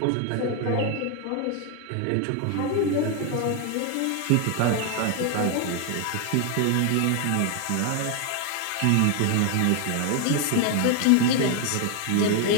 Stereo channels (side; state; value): both; different; correlation 0.01